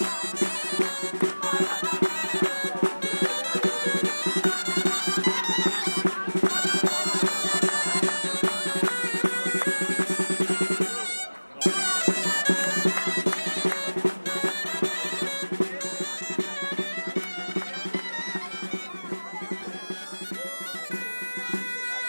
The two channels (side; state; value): both; inverted; correlation -1.00